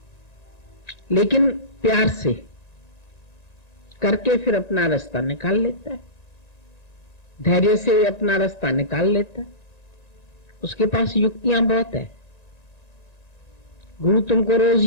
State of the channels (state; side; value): late; right; 1.9 ms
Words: लेकिन प्यार से करके फिर अपना रास्ता निकाल लेता है, धैर्य से अपना रास्ता निकाल लेता है। उसके पास युक्तियां बहुत है। गुरु तुमको रोज